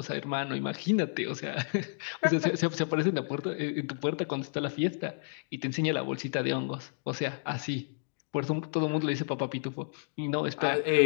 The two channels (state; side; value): silent; right; digital silence